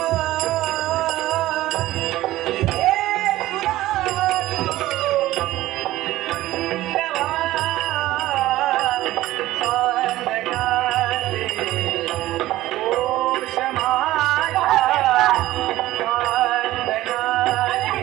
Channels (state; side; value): quieter; left; 15.9 dB